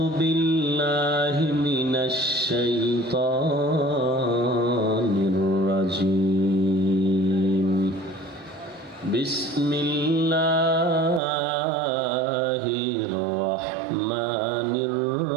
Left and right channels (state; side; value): drops out; left; at 11.2 s